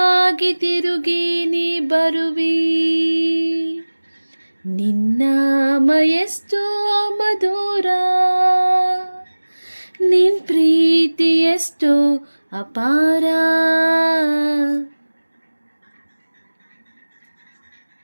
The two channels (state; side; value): inverted; both; correlation -1.00